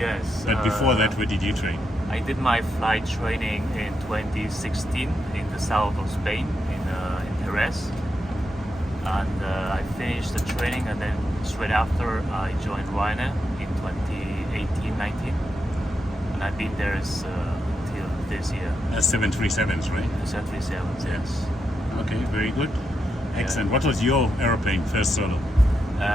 but before that, where did you train? I did my flight training in 2016 in the south of Spain, in Jerez. And I finished the training, and then straight after I joined Ryanair in 2018-19. And I've been there till this year, That's 737s, right? the 737s, yes. Okay, very good. Excellent. What was your aeroplane first solo?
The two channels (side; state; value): both; normal; correlation 0.84